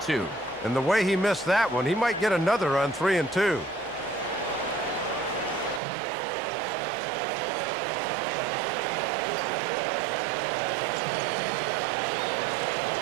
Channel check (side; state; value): left; drops out; at 5.8 s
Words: And the way he missed that one, he might get another on 3-2.